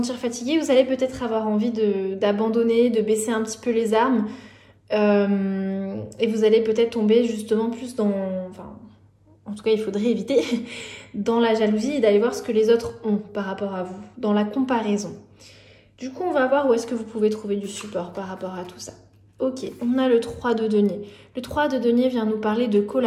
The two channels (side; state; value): both; identical; correlation 1.00